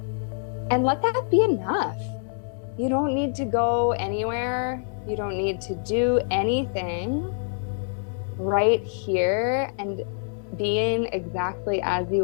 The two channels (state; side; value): silent; right; digital silence